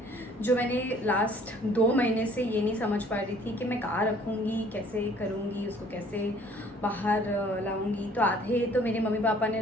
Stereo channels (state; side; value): normal; both; correlation 0.56